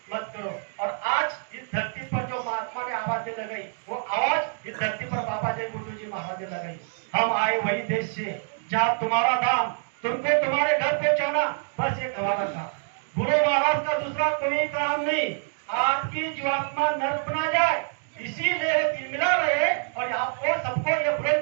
मत करो। और आज इस धरती पर जो महात्मा ने आवाज लगाई, वो आवाज इस धरती पर बाबा जय गुरुदेव जी महाराज ने लगाई। हम आए वही देश से जहाँ तुम्हारा धाम, तुमको तुम्हारे घर पहुंचाना, बस एक हमारा था। गुरु महाराज का दूसरा कोई काम नहीं, आपकी जीवात्मा नर्क बना जाए, इसीलिए तिलमिला रहे। और आपको सबको ये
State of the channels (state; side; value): silent; left; digital silence